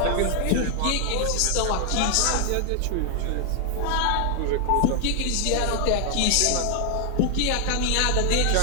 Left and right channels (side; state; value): both; different; correlation 0.00